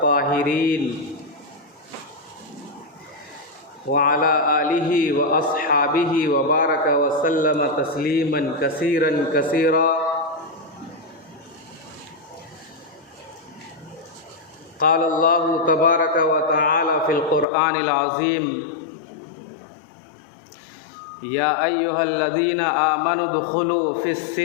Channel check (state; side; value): drops out; right; at 17.4 s